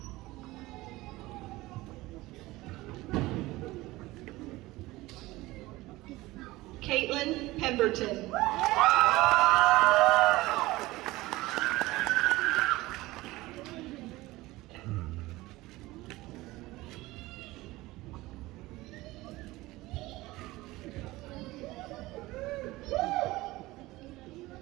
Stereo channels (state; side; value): quieter; left; 19.2 dB